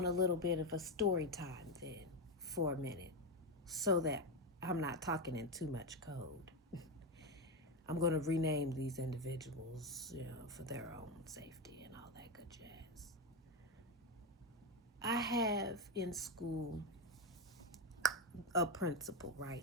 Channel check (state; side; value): normal; both; correlation 0.10